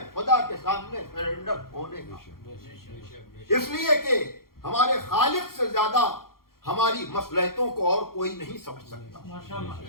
خدا کے سامنے سرنڈر ہونے کا۔ اس لیے کہ ہمارے خالق سے زیادہ ہماری مصلحتوں کو اور کوئی نہیں سمجھ سکتا،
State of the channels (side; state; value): right; late; 0.93 ms